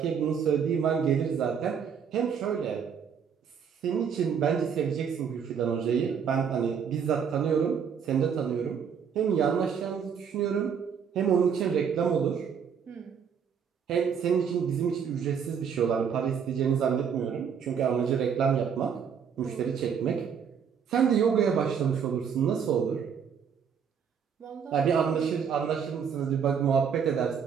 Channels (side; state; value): left; quieter; 7.2 dB